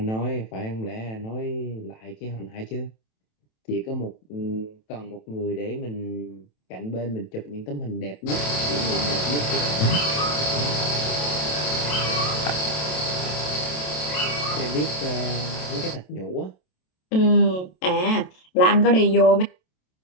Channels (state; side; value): late; right; 27 ms